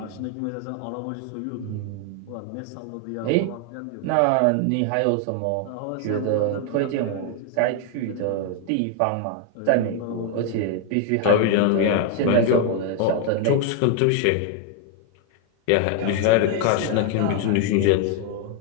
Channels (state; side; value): different; both; correlation 0.00